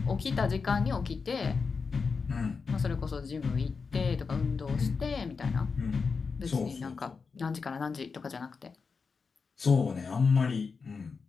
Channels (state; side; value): quieter; right; 5.0 dB